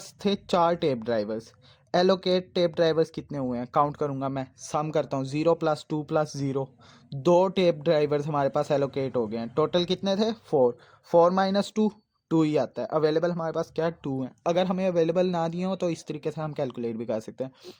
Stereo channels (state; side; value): identical; both; correlation 1.00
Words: थे 4 tape drivers. Allocate tape drivers कितने हुए हैं, काउंट करूंगा मैं, सम करता हूँ, 0 + 2 + 0, 2 टेप ड्राइवर्स हमारे पास एलोकेट हो गए हैं। टोटल कितने थे, 4, 4 - 2 टू ही आता है। अवेलेबल हमारे पास क्या है, 2 है। अगर हमें अवेलेबल ना दिए हो तो इस तरीके से हम कैलकुलेट भी कर सकते हैं।